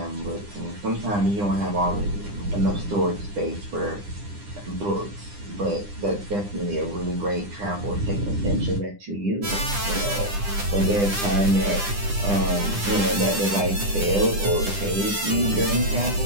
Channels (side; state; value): left; late; 9.9 ms